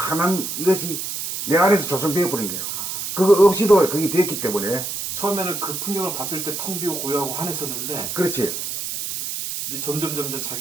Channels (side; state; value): right; noise; hiss, 5 dB below the sound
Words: 이것이 내 안에서 조성되어 버린 거예요. 그거 없이도 그게 됐기 때문에. 처음에는 그 풍경을 봤을 때 텅 비고 고요하고 환했었는데 그렇지. 이제 점점